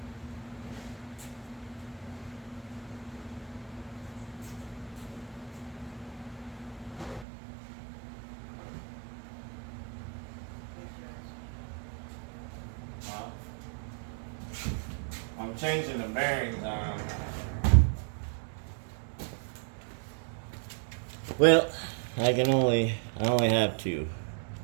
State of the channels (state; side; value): drops out; left; at 7.2 s